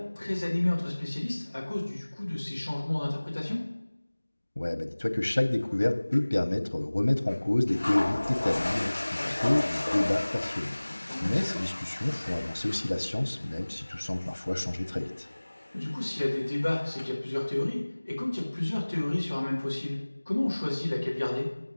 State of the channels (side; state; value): both; inverted; correlation -1.00